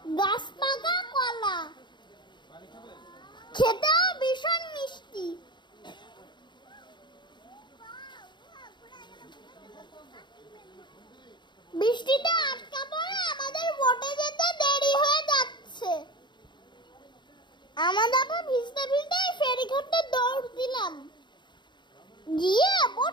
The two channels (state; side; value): late; right; 0.22 ms